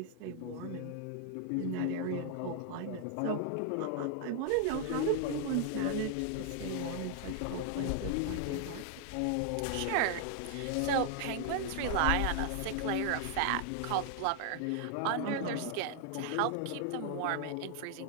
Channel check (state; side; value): different; both; correlation 0.00